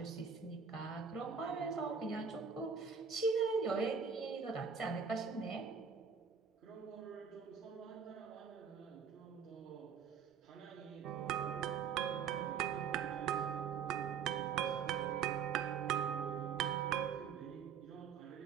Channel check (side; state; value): left; quieter; 6.5 dB